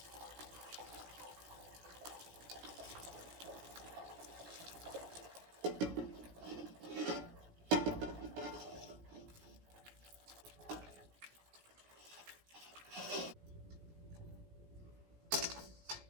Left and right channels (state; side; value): late; left; 17 ms